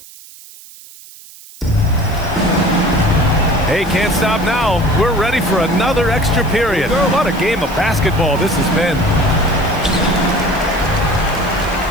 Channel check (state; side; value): noise; right; hiss, 20 dB below the sound